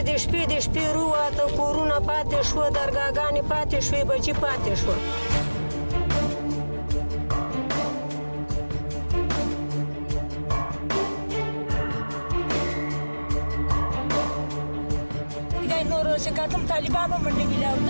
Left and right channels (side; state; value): both; inverted; correlation -1.00